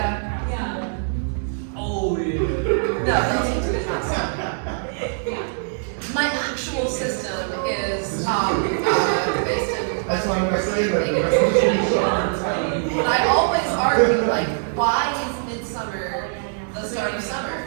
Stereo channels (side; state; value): left; silent; digital silence